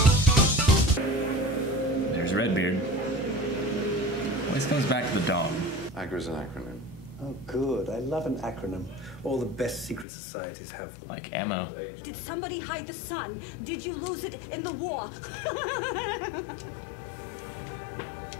There's Redbeard. Always comes back to the dog. AGRA is an acronym. Oh, good. I love an acronym. All the best secret societies have them. Like ammo. Did somebody hide the sun? Did you lose it in the war?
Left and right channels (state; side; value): drops out; right; at 10.1 s